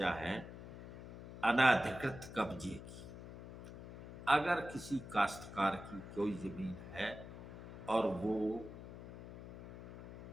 है अनाधिकृत कब्जे की। अगर किसी काश्तकार की कोई ज़मीन है और वो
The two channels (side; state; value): left; noise; hum, 13 dB below the sound